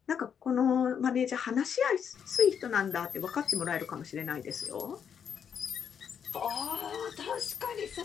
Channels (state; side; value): quieter; right; 7.7 dB